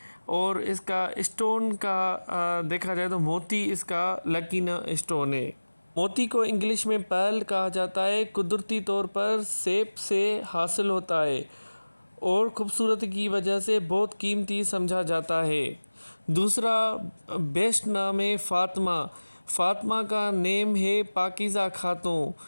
اور اس کا اسٹون کا دیکھا جائے تو موتی اس کا لکی اسٹون ہے۔ موتی کو انگلش میں پرل کہا جاتا ہے، قدرتی طور پر سیپ سے حاصل ہوتا ہے اور خوبصورتی کی وجہ سے بہت قیمتی سمجھا جاتا ہے۔ دوسرا بیسٹ نام ہے فاطمہ۔ فاطمہ کا نیم ہے پاکیزہ خاتون۔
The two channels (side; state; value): both; inverted; correlation -1.00